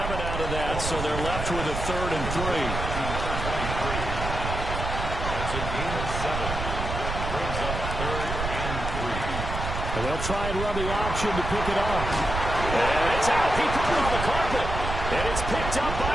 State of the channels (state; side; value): noise; right; rumble, 4 dB below the sound